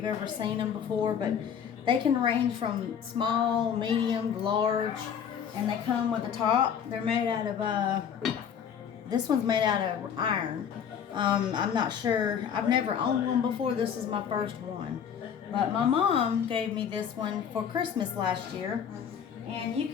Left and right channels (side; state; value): right; quieter; 8.0 dB